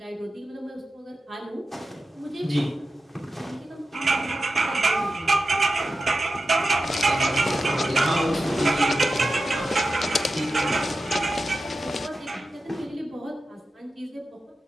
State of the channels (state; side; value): normal; both; correlation 0.92